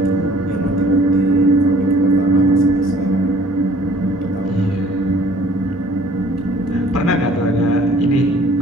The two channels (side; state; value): both; normal; correlation 0.55